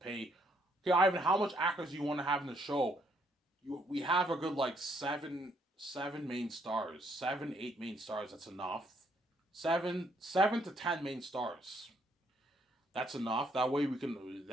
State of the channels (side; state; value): both; normal; correlation 0.70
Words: Okay, Ivan, how much actors do you want to have in the show? We have a good like 7 main stars, 7, 8 main stars. That's enough. 7 to 10 main stars. That's enough. That way we can.